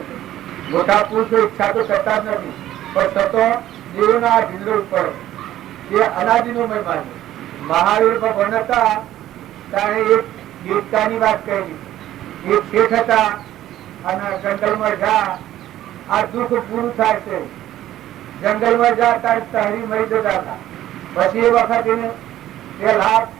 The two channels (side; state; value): left; quieter; 13.3 dB